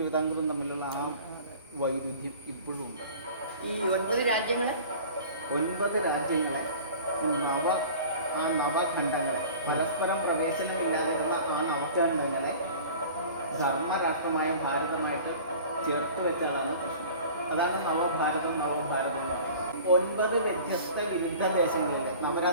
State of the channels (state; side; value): inverted; both; correlation -0.43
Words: തമ്മിലുള്ള ആ വൈരുദ്ധ്യം ഇപ്പോഴും ഉണ്ട്. ഈ 9 രാജ്യങ്ങളെ നവഖണ്ഡങ്ങളെ പരസ്പരം പ്രവേശനമില്ലാതിരുന്ന ആ നവഖണ്ഡങ്ങളെ ധർമ്മരാഷ്ട്രമായ ഭാരതമായിട്ട് ചേർത്ത് വെച്ചാണ് കൃഷ്ണൻ. അതാണ് നവഭാരതം എന്ന് പറയുന്നത്. 9 വ്യത്യസ്ത വിരുദ്ധ ദേശങ്ങളിലെ